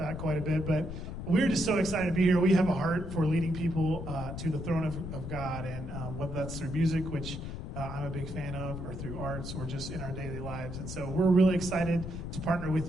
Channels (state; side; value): noise; left; rumble, 7 dB below the sound